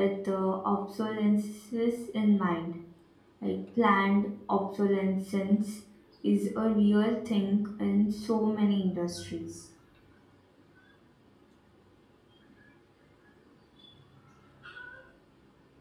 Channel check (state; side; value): identical; both; correlation 1.00